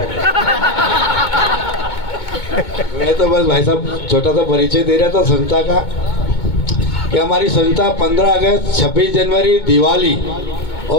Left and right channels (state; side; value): late; right; 2.2 ms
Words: मैं तो बस भाई साहब छोटा सा परिचय दे रहा था संस्था का कि हमारी संस्था 15 अगस्त, 26 जनवरी, दिवाली